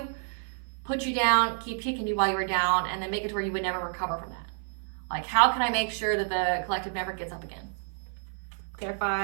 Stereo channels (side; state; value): left; silent; 56 dB below the other